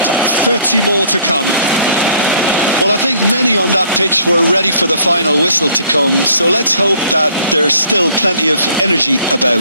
more to come. Well, I think many on that pitch were ready for the final whistle to come, so let's hope that there's still plenty of energy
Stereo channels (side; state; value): both; inverted; correlation -0.60